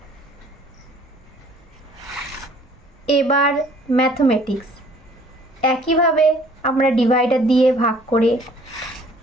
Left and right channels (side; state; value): both; normal; correlation 0.56